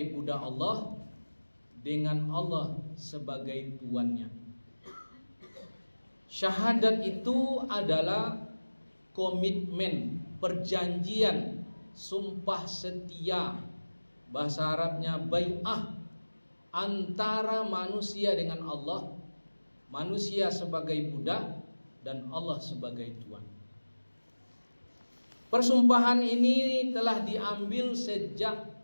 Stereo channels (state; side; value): inverted; both; correlation -1.00